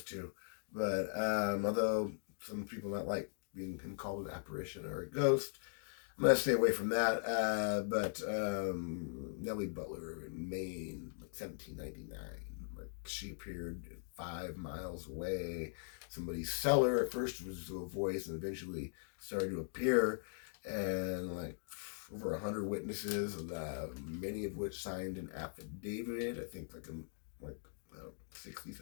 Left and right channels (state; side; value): silent; right; digital silence